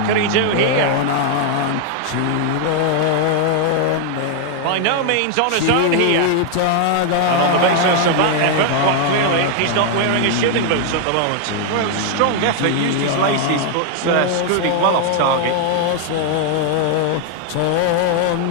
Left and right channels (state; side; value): different; both; correlation 0.00